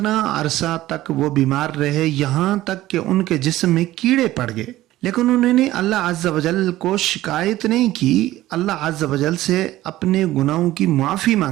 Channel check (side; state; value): left; quieter; 15.6 dB